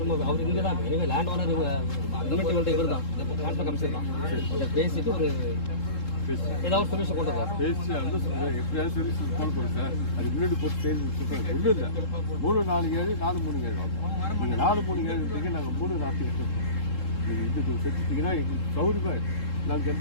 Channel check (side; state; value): right; late; 3.7 ms